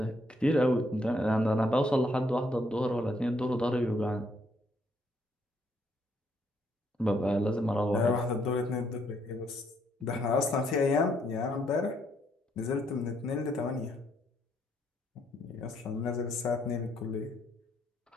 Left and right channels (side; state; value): both; normal; correlation 0.72